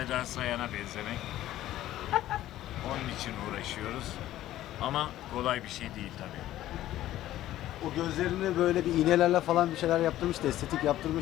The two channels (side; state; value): right; quieter; 13.9 dB